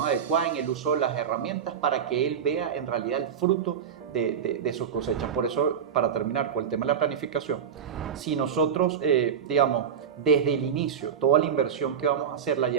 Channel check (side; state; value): left; quieter; 7.8 dB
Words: adecuada en el uso de las herramientas para que él vea en realidad el fruto de sus cosechas. Por eso, para terminar con el tema de la planificación, si nosotros, digamos, desde el inicio, toda la inversión que vamos a hacer la